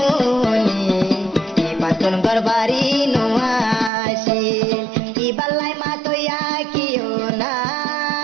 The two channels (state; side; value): drops out; left; at 3.9 s